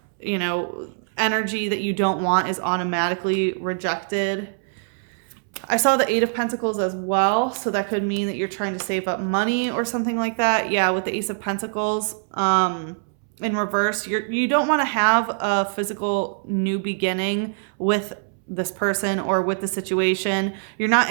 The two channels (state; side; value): silent; left; 63 dB below the other